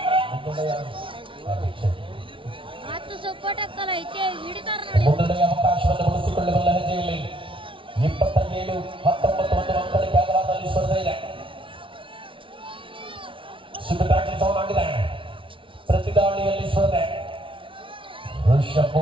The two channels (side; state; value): left; late; 0.25 ms